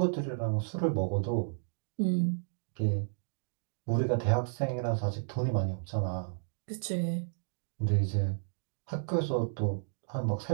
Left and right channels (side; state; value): left; silent; digital silence